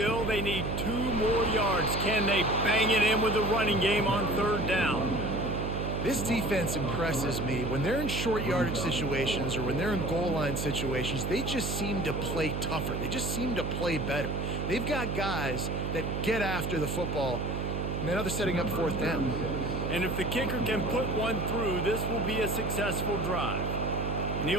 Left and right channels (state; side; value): noise; right; hum, 2 dB below the sound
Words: they need 2 more yards. Can they bang it in with the running game on 3rd down? This defense impresses me. When they're in short yardage situations or when they're in goal line situations, they just seem to play tougher. They just seem to play better. They've got guys that get after the football, and now they're setting up 4th down. And if the kicker can put one through, this will be a successful drive. And